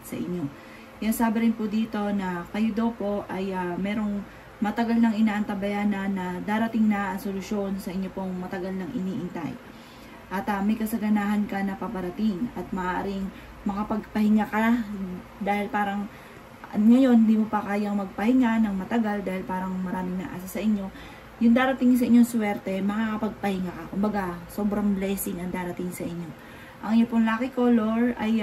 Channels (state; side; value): identical; both; correlation 1.00